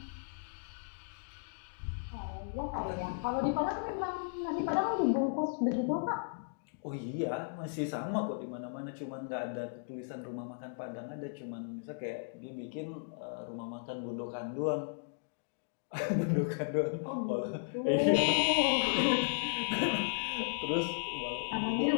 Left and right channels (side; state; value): right; silent; digital silence